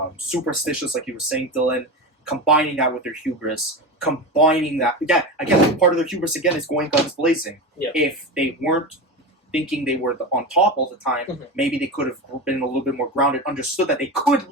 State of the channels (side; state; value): both; normal; correlation 0.22